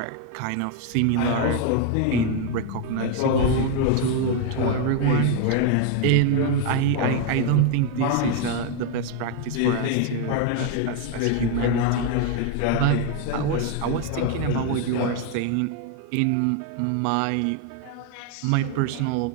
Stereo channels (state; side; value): different; both; correlation 0.01